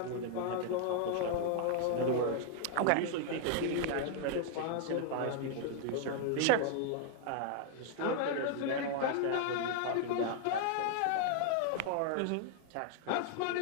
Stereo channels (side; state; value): both; different; correlation 0.00